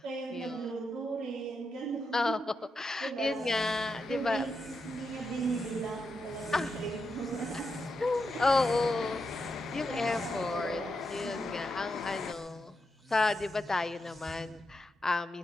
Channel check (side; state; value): both; normal; correlation 0.85